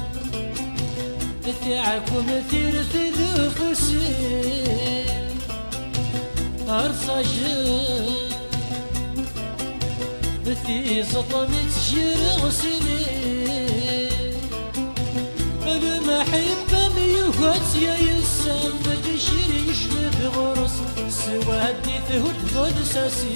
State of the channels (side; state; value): both; inverted; correlation -1.00